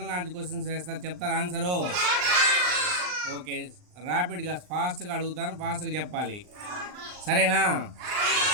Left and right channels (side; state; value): left; late; 39 ms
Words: నాలెడ్జ్ క్వశ్చన్స్ వేస్తారు, చెప్తారా ఆన్సరు? ఓకే, ర్యాపిడ్గా ఫాస్ట్గా అడుగుతాను, ఫాస్ట్గా చెప్పాలి, సరేనా?